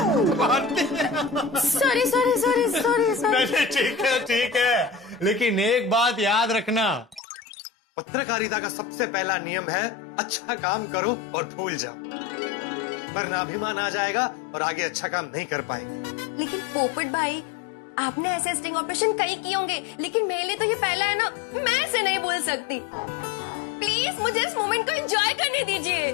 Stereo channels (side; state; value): right; drops out; at 7.2 s